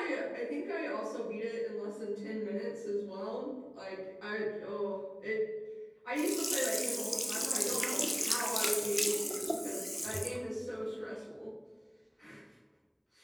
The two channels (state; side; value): identical; both; correlation 1.00